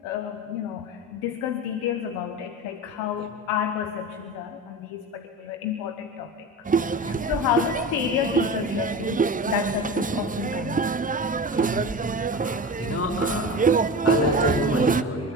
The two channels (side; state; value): both; normal; correlation 0.29